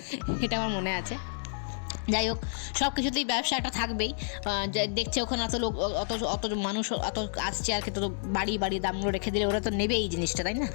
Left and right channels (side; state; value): right; silent; digital silence